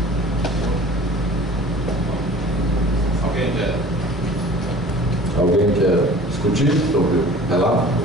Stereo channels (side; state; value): both; normal; correlation 0.44